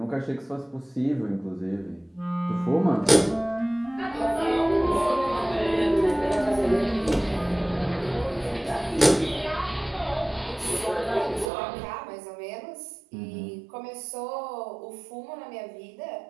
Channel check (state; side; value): drops out; left; at 11.5 s